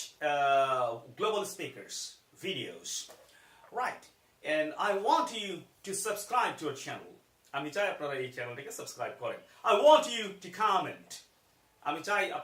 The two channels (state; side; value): identical; both; correlation 1.00